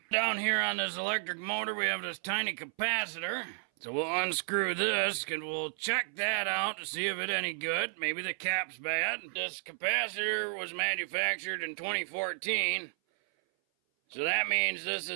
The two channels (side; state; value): left; silent; 56 dB below the other